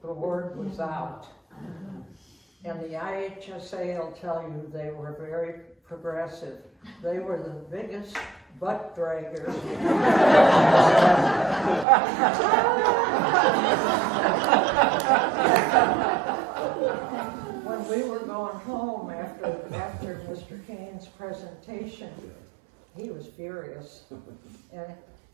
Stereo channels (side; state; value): left; drops out; at 11.9 s